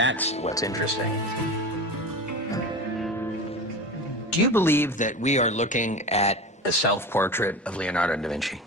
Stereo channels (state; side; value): normal; both; correlation 0.29